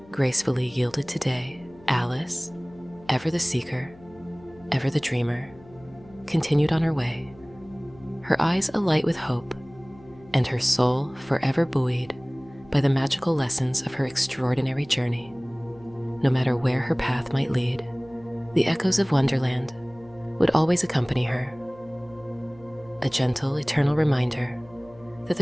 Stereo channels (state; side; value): noise; left; hum, 23 dB below the sound